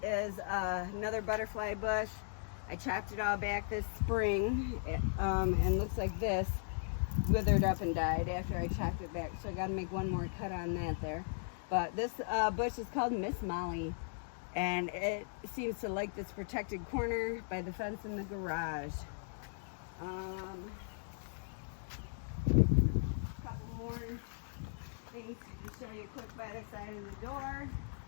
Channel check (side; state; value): right; silent; digital silence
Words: is another butterfly bush. I chopped it all back this spring, and looks like this withered up and died after I chopped it back. So I got to make one more cut on that there. But this bush is called Miss Molly, and it seems to like this protected corner by the fence in the garage. A couple more things to show you quick by the side of the door.